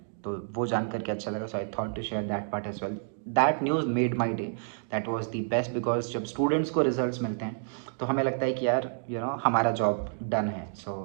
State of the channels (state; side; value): silent; left; digital silence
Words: तो वो जान करके अच्छा लगा. So I thought to share that part as well. That news made my day. That was the best because जब स्टूडेंट्स को रिजल्ट्स मिलते हैं तो हमें लगता है कि यार हमारा जॉब डन है. So